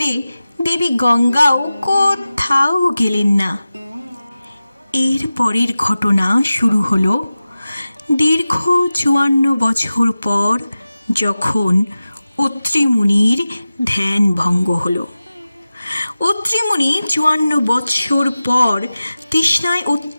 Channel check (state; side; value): inverted; both; correlation -0.95